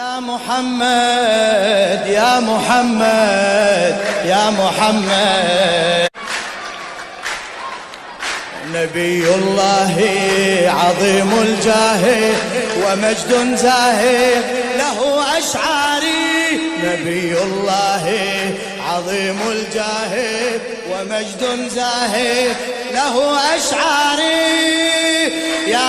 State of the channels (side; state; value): both; identical; correlation 1.00